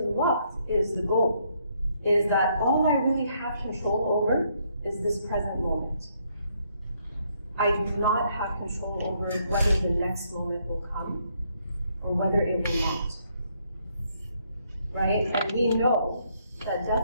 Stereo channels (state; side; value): inverted; both; correlation -0.72